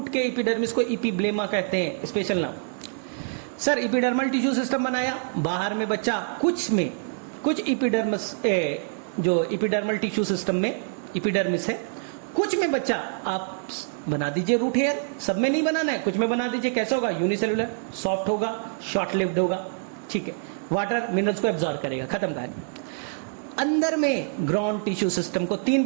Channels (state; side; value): silent; left; digital silence